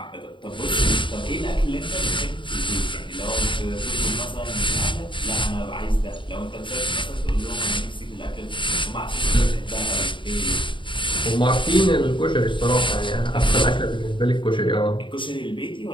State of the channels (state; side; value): late; right; 0.24 ms